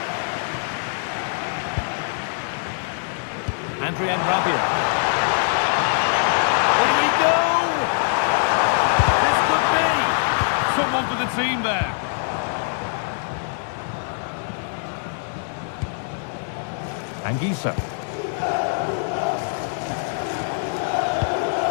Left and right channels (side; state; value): right; silent; digital silence